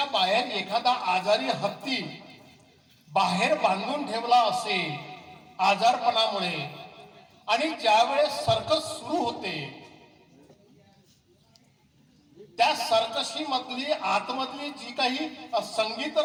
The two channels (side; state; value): both; identical; correlation 1.00